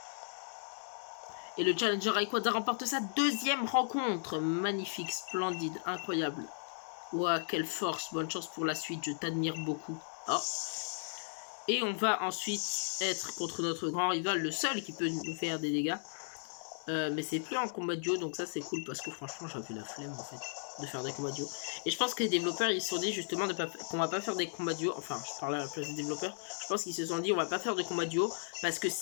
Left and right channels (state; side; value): silent; right; digital silence